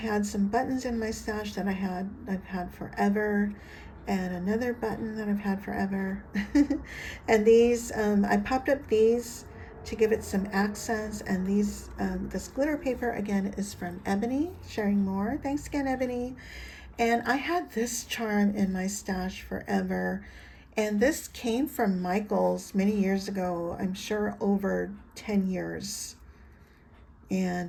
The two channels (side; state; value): both; identical; correlation 1.00